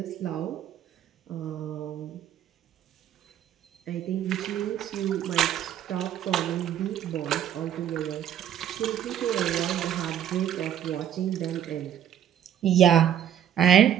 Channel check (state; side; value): quieter; left; 10.3 dB